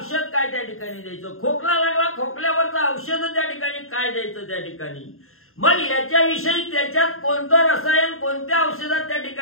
काय त्या ठिकाणी द्यायचं, खोकला लागला खोकल्यावरचं औषध त्या ठिकाणी काय द्यायचं त्या ठिकाणी. मग याच्याविषयी त्याच्यात कोणतं रसायन कोणत्या औषधात त्या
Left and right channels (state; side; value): late; right; 0.62 ms